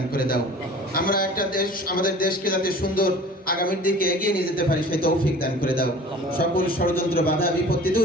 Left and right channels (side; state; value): both; normal; correlation 0.44